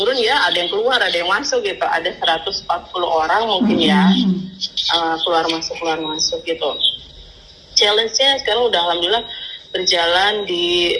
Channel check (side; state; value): both; identical; correlation 1.00